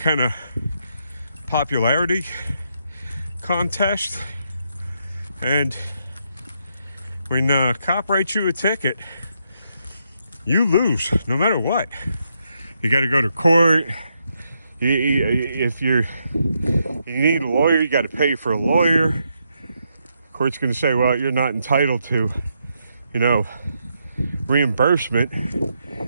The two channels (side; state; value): both; inverted; correlation -0.80